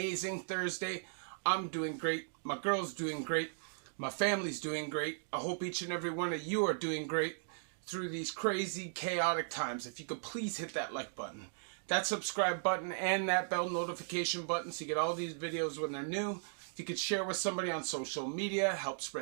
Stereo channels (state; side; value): silent; left; digital silence